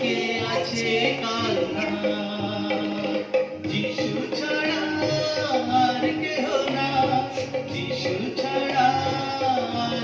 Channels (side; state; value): both; identical; correlation 1.00